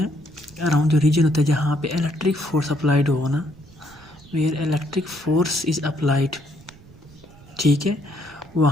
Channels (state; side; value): noise; right; rumble, 24 dB below the sound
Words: अराउंड जो रीजन होता है जहाँ पे इलेक्ट्रिक फोर्स अप्लाइड हो ना, where electric force is applied, ठीक है,